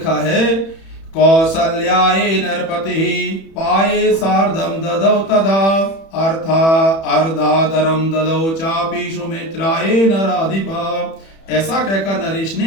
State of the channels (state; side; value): late; right; 31 ms